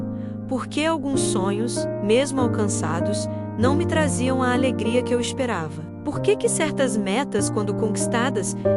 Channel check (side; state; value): both; identical; correlation 1.00